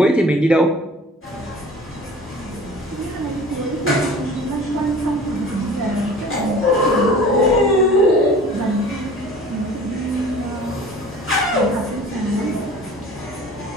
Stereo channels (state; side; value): normal; both; correlation 0.44